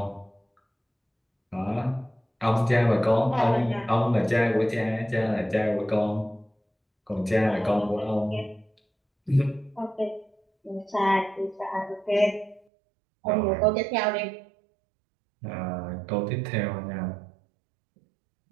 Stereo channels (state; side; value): drops out; left; at 12.6 s